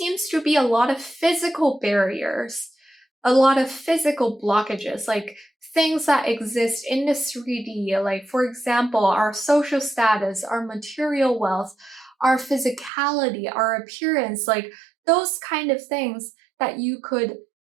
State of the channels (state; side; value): drops out; left; at 12.9 s